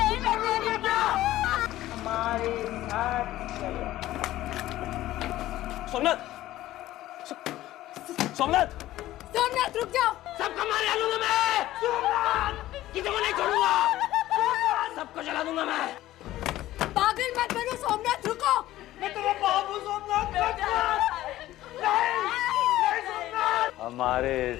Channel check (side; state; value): right; quieter; 15.1 dB